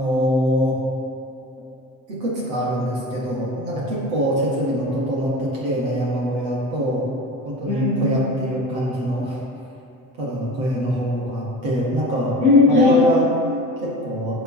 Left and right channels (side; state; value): left; late; 7.9 ms